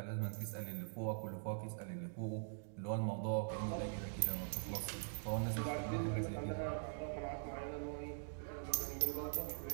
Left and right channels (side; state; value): left; silent; digital silence